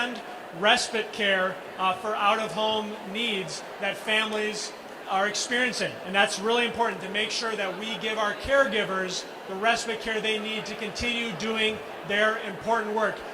respite care for out-of-home needs that families are experiencing. And that's really important, to make sure that we give our caregivers the respite care they need to continue doing their important work.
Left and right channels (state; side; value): identical; both; correlation 1.00